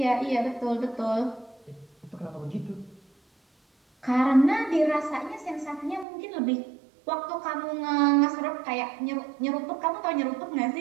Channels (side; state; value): left; drops out; at 6.1 s